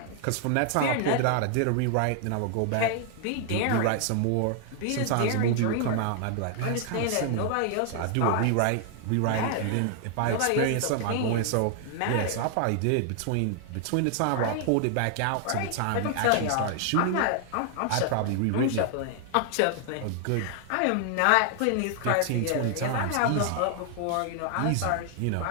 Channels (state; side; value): different; both; correlation 0.00